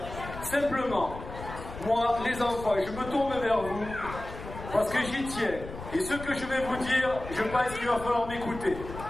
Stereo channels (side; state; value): left; noise; rumble, 11 dB below the sound